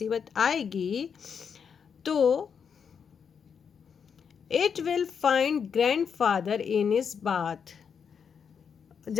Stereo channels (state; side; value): quieter; right; 6.8 dB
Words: आएगी, तो it will find grandfather in his bath.